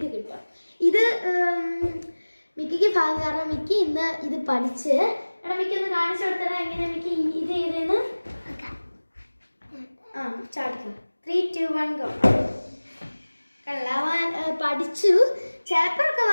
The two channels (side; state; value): both; inverted; correlation -1.00